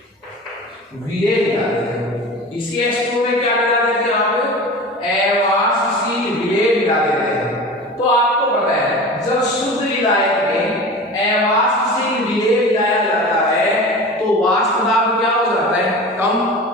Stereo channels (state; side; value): normal; both; correlation 0.34